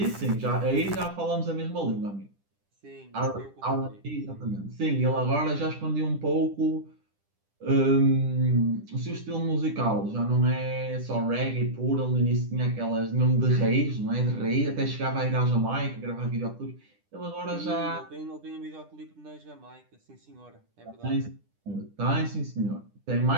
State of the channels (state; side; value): late; left; 10 ms